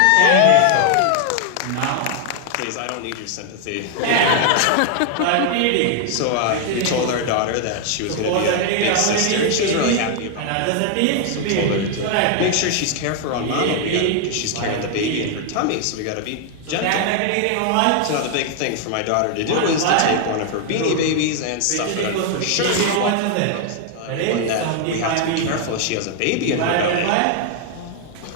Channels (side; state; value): both; different; correlation 0.00